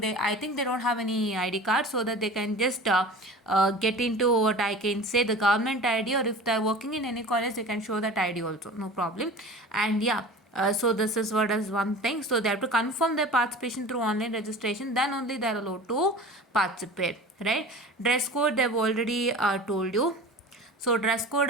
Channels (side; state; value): both; normal; correlation 0.37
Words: think they don't have any ID card, so that they can just get into what I can say, the government ID, or if they're working in any college, they can show that ID also, no problem. And yeah, so this is what is one thing. So they have to confirm their participation through online registration, then only they are allowed to participate, right? Dress code, they've already told you. So dress code